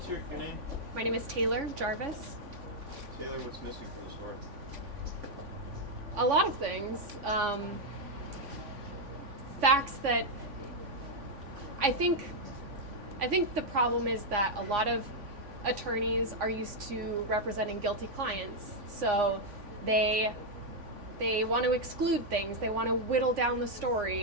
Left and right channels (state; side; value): late; left; 3.5 ms